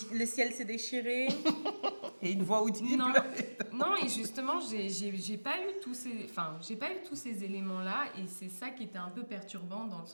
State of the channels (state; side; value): inverted; both; correlation -1.00